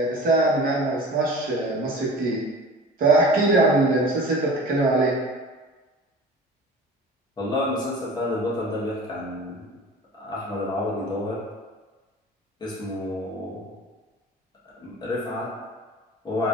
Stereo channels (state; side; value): normal; both; correlation 0.39